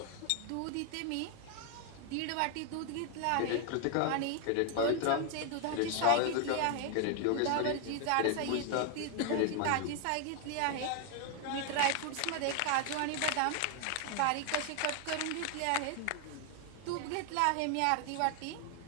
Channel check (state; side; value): different; both; correlation 0.00